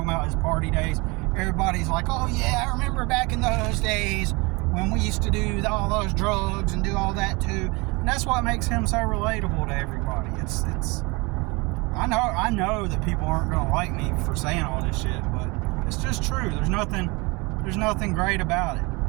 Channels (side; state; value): left; quieter; 26.4 dB